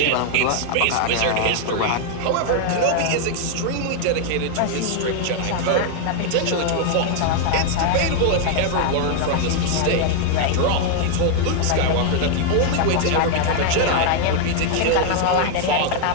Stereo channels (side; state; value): both; different; correlation 0.00